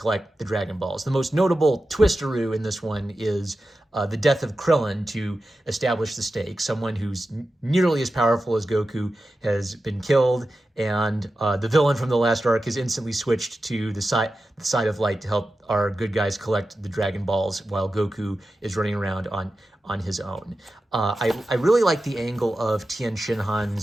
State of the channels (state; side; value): normal; both; correlation 0.92